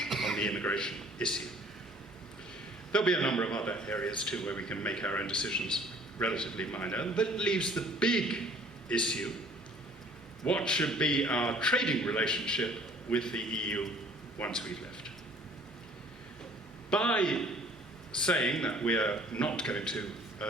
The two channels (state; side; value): normal; both; correlation 0.55